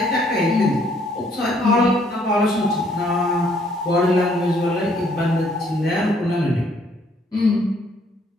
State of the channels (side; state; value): both; normal; correlation 0.66